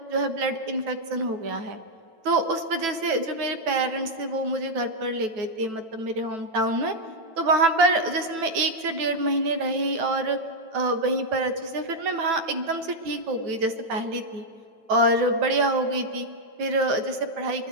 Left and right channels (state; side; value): late; left; 9.1 ms